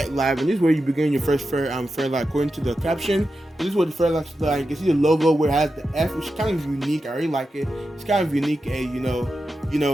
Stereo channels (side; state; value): both; normal; correlation 0.90